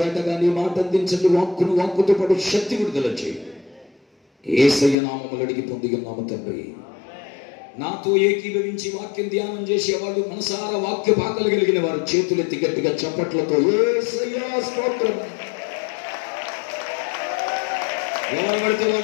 నీ మాట అందించండి. వాక్కును వాక్కుతో పాటు శక్తి విడుదల చేయండి. యేసయ్య నామములు అడిగి పొందుకున్నాము తండ్రి. నాతో ఏకీభవించి వాక్యం ధ్యానం చేసేవాళ్ళు, మనసారా వాక్య పాకలు కలిగిన వారు చేతులెత్తి గట్టిగా చప్పట్లతో యేసయ్య స్తోత్రం. ఎవరు పడితే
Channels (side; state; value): right; drops out; at 5.0 s